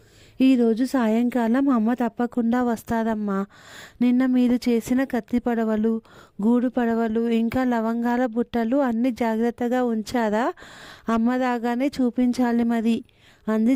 ఈరోజు సాయంకాలం అమ్మ తప్పకుండా వస్తారమ్మా. నిన్న మీరు చేసిన కత్తి పడవలు, గూడు పడవలు, ఇంకా లవంగాల బుట్టలు అన్నీ జాగ్రత్తగా ఉంచారా? అమ్మ రాగానే చూపించాలి మరి అంది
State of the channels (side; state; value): both; identical; correlation 1.00